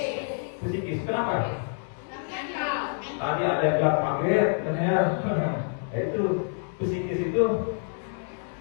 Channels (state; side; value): silent; right; 55 dB below the other